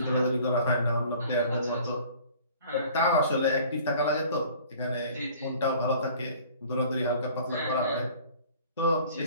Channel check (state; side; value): inverted; both; correlation -0.49